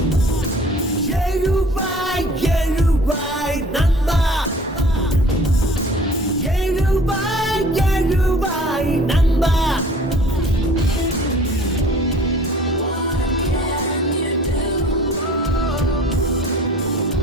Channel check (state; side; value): normal; both; correlation 0.49